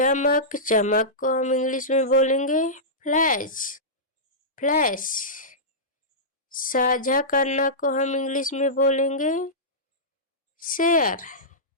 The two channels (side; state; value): both; normal; correlation -0.16